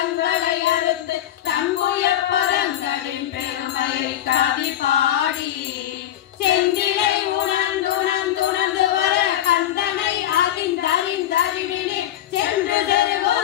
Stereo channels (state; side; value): quieter; right; 12.2 dB